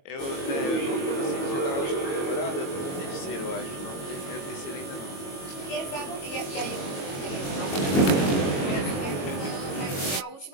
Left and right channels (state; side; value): late; right; 22 ms